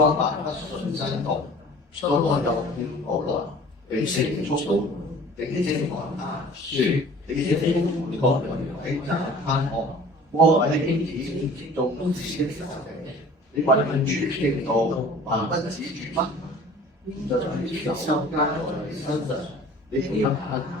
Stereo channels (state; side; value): normal; both; correlation 0.46